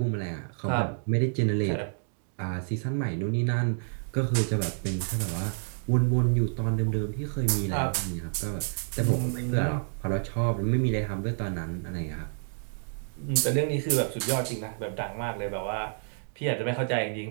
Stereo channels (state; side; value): silent; left; digital silence